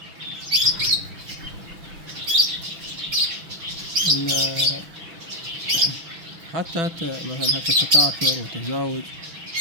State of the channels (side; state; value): left; late; 6.1 ms